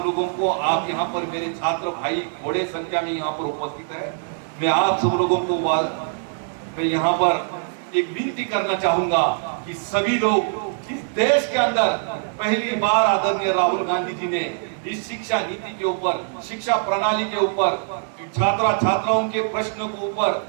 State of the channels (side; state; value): left; silent; digital silence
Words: लोगों को, आप यहाँ पर मेरे छात्र भाई बड़े संख्या में यहाँ पर उपस्थित है, मैं आप सब लोगों को मैं यहाँ पर एक विनती करना चाहूंगा कि सभी लोग इस देश के अंदर पहली बार आदरणीय राहुल गांधी जी ने इस शिक्षा नीति के ऊपर, शिक्षा प्रणाली के ऊपर, छात्राओं के प्रश्नों के